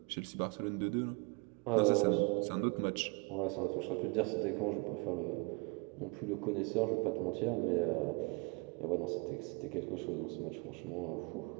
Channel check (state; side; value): quieter; left; 31.3 dB